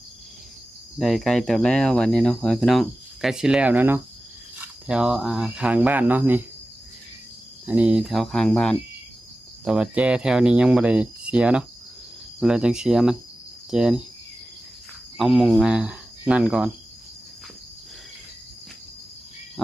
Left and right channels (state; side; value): normal; both; correlation 0.95